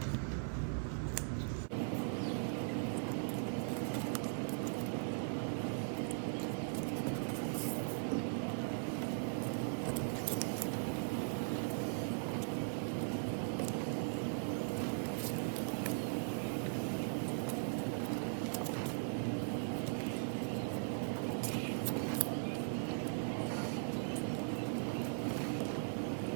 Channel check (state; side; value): silent; left; digital silence